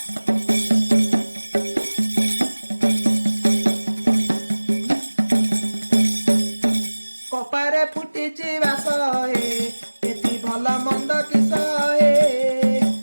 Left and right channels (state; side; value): inverted; both; correlation -1.00